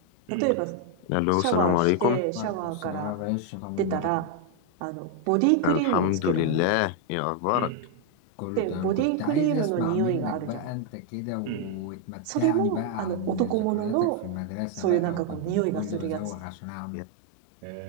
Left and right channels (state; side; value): different; both; correlation 0.00